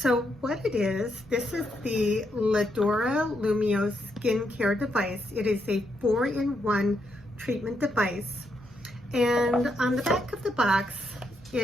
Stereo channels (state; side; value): normal; both; correlation 0.79